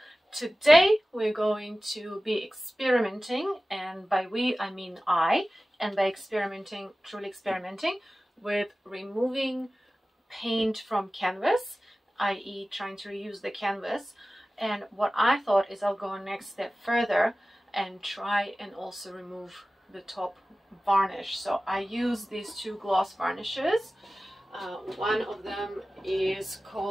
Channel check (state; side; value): normal; both; correlation 0.96